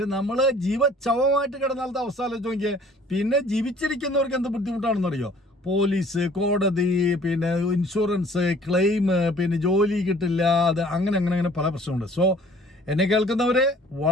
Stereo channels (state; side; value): normal; both; correlation 0.54